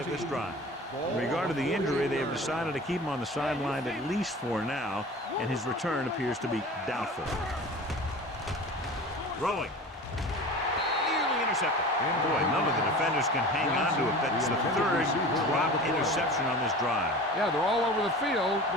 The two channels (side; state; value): both; normal; correlation 0.37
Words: this drive. In regard to the injury, they have decided to keep him on the sideline at least for now, and his return appears to be doubtful. Throwing. Nearly intercepted. And boy, none of the defenders can hang on to it. That's the third drop interception on this drive. Yeah, they're all over the field,